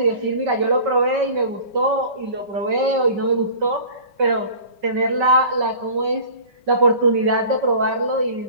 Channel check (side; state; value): left; late; 5.3 ms